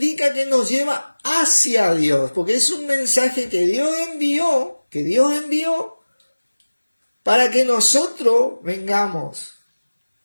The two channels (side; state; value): both; inverted; correlation -1.00